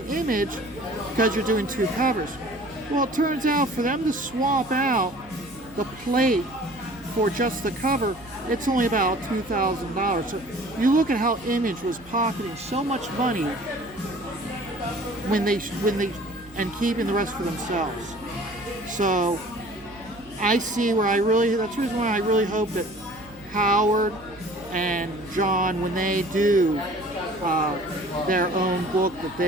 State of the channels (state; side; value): noise; right; hum, 22 dB below the sound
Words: Image because you're doing 2 covers. Well, it turns out for them to swap out the plate for just the cover, it's only about $2,000. So you look at how Image was pocketing so much money when they and keeping the rest for themselves. So I see where that's the reason why I really hope that Howard and John, when they do their own book, that